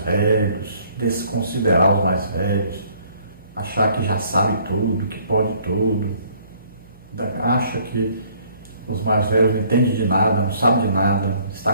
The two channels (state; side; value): inverted; both; correlation -0.60